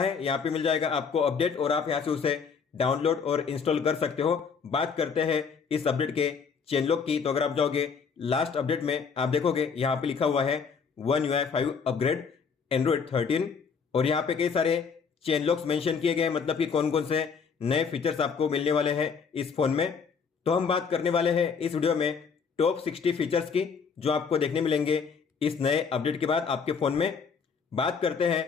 यहाँ पे मिल जाएगा आपको अपडेट और आप यहाँ से उसे डाउनलोड और इंस्टॉल कर सकते हो। बात करते हैं इस अपडेट के चेंज लॉक की, तो अगर आप जाओगे लास्ट अपडेट में आप देखोगे यहाँ पे लिखा हुआ है One UI 5 अपग्रेड Android 13 और यहाँ पे कई सारे चेंज लॉक्स मेंशन किए गए, मतलब कि कौन कौन से नए फीचर्स आपको मिलने वाले हैं इस फोन में। तो हम बात करने वाले हैं इस वीडियो में टॉप 60 फीचर्स की जो आपको देखने मिलेंगे इस नए अपडेट के बाद आपके फोन में। बात करते हैं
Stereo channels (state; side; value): quieter; right; 5.9 dB